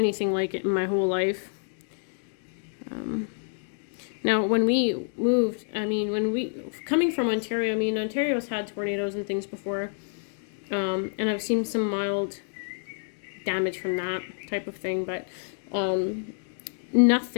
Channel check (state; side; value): silent; right; digital silence